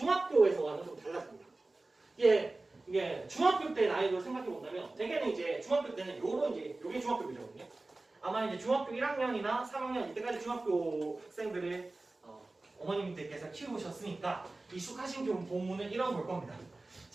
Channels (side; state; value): left; quieter; 3.1 dB